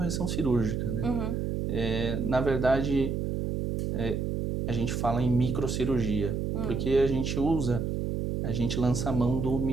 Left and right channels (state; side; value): noise; right; hum, 1 dB below the sound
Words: cirúrgica, né? Uhum. Na verdade, a gente fala em microcirurgia, porque a gente lança a mão do